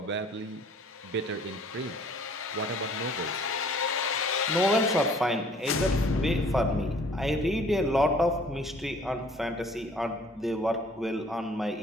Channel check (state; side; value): normal; both; correlation 0.55